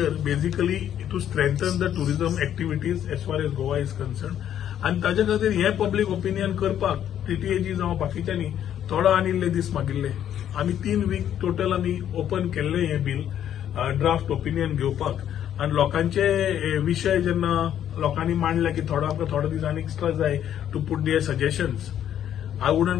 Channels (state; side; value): quieter; right; 10.3 dB